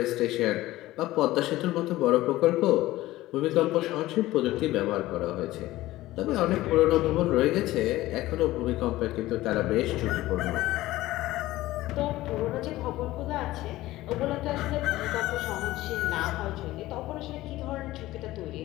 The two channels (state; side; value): quieter; right; 16.8 dB